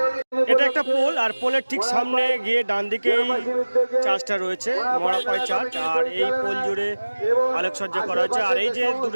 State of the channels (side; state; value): both; inverted; correlation -1.00